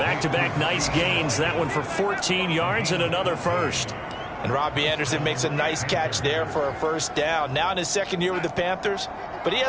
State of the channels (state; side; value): identical; both; correlation 1.00